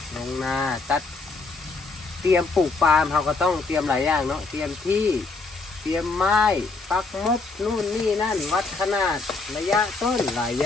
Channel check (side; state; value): right; quieter; 3.9 dB